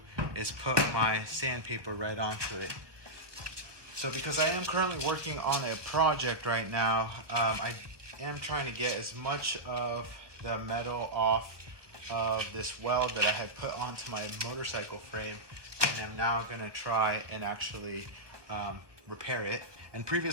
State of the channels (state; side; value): late; left; 1.2 ms